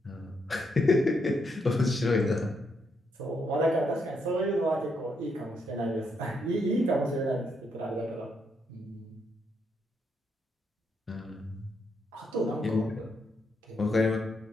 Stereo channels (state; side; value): normal; both; correlation 0.77